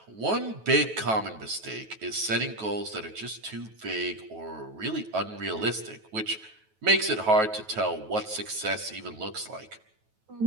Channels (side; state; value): left; late; 9.2 ms